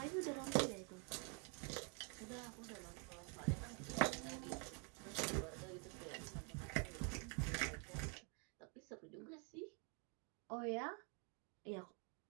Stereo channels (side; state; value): left; quieter; 36.4 dB